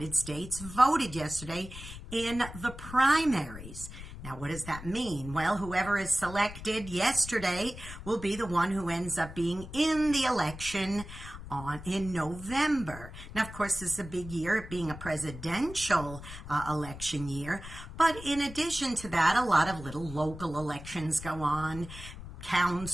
States voted yesterday in the primaries. Now, what does that mean? Well, whoever is selected yesterday will be the one who ends up being in the election in November. Now, of course, this is a big year, it being a presidential election year. But in addition to that, a lot of little local elections go on.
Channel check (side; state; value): left; noise; rumble, 12 dB below the sound